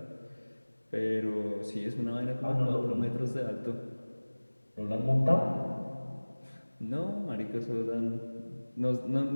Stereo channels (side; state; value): both; inverted; correlation -1.00